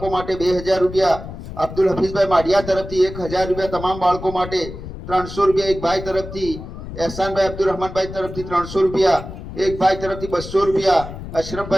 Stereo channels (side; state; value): left; noise; rumble, 11 dB below the sound